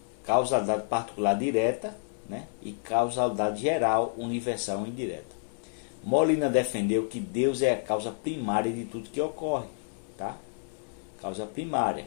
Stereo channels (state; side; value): silent; right; 58 dB below the other